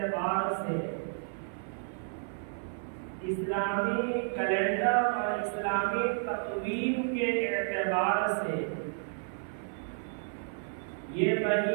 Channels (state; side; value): silent; left; 57 dB below the other